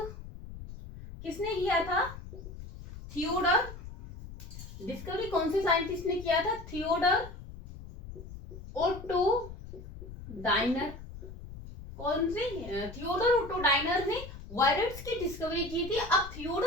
किसने किया था, थियोडर. डिस्कवरी कौन से साइंटिस्ट ने किया था, थियोडर ओटो डायनर. कौन से, थियोडर ओटो डायनर ने वायरस की डिस्कवरी की थी. अब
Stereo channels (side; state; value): left; noise; rumble, 13 dB below the sound